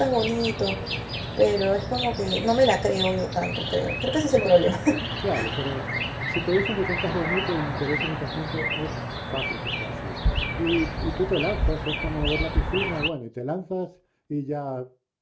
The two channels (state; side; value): identical; both; correlation 1.00